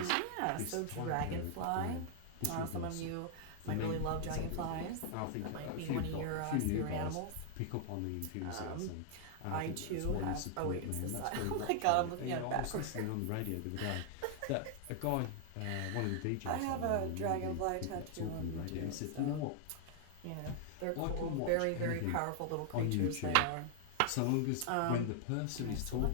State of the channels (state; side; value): different; both; correlation 0.00